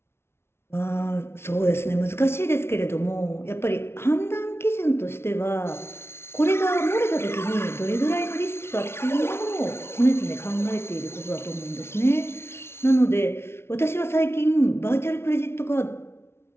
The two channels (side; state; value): right; late; 0.12 ms